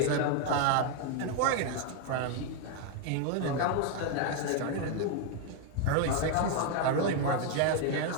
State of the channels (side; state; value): both; different; correlation 0.01